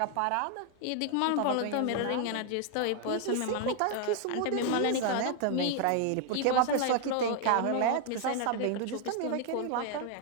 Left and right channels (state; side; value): different; both; correlation 0.00